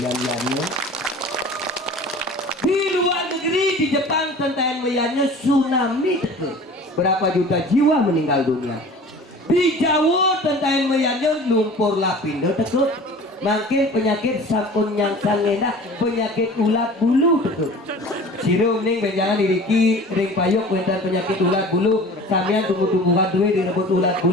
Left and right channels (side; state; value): both; normal; correlation 0.42